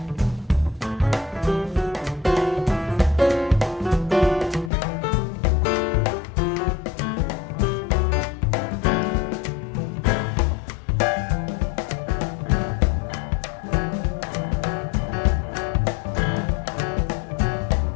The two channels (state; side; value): drops out; right; at 4.7 s